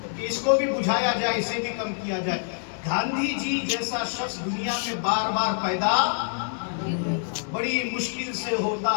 इसको भी बुझाया जाए, इसे भी कम किया जाए। गांधी जी जैसा शख्स दुनिया में बार बार पैदा बड़ी मुश्किल से होता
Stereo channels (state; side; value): silent; right; digital silence